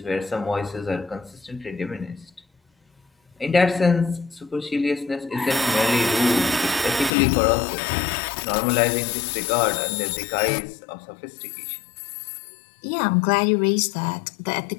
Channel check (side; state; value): right; drops out; at 7.2 s